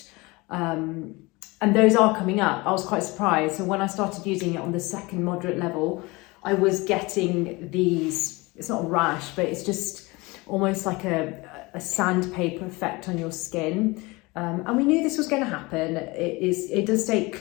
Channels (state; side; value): quieter; right; 23.9 dB